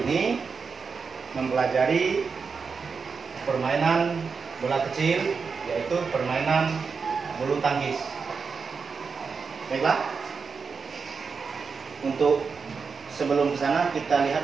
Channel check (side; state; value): left; quieter; 5.3 dB